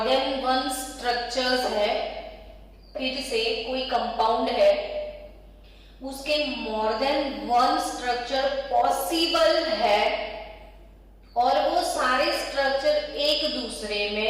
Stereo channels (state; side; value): identical; both; correlation 1.00